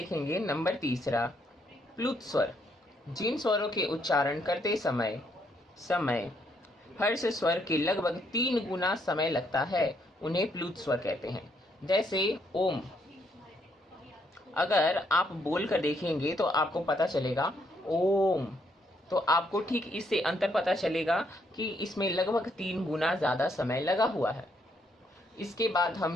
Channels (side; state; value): both; normal; correlation 0.73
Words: नंबर 3, प्लुत स्वर। जिन स्वरों के उच्चारण करते समय हर्ष स्वर के लगभग 3 गुना समय लगता है उन्हें प्लुत स्वर कहते हैं। जैसे ओम। अगर आप बोल कर देखेंगे तो आपको पता चलेगा ओम, तो आपको ठीक इससे अंतर पता चलेगा कि इसमें लगभग 3 गुना ज्यादा समय लगा हुआ है। इसके बाद